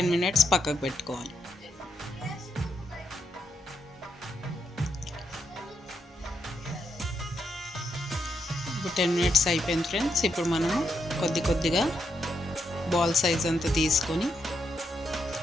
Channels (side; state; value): both; normal; correlation 0.80